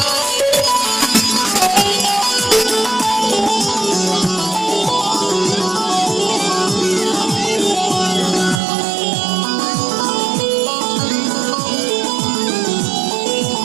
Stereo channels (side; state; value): left; drops out; at 8.6 s